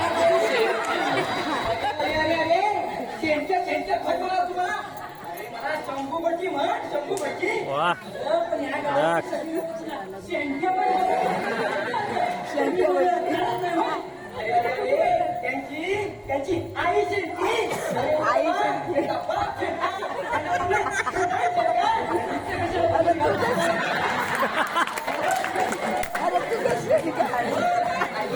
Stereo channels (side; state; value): both; identical; correlation 1.00